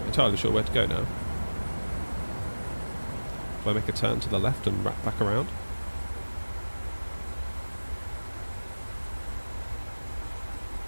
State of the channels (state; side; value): inverted; both; correlation -1.00